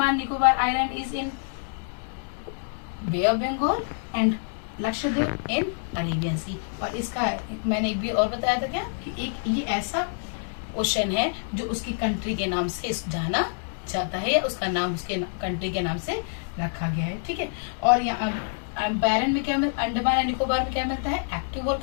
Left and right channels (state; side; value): silent; right; digital silence